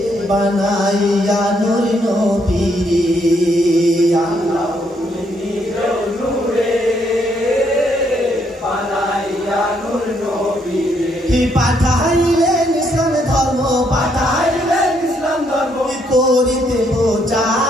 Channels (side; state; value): both; normal; correlation 0.72